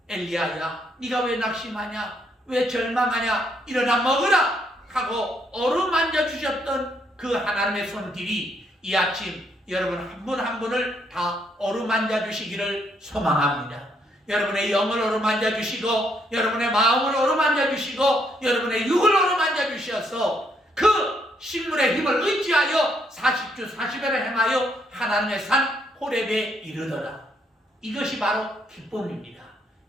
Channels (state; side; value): normal; both; correlation 0.73